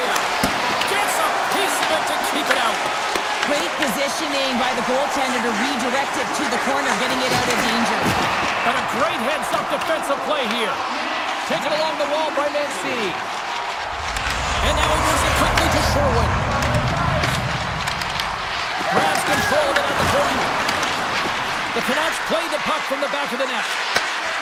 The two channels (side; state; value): both; identical; correlation 1.00